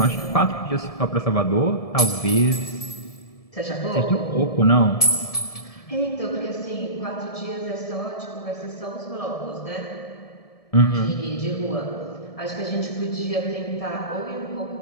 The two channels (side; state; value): right; late; 1.7 ms